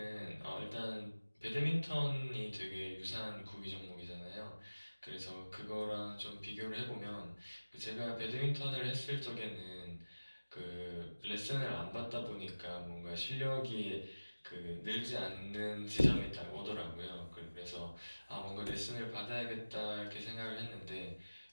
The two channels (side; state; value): both; inverted; correlation -1.00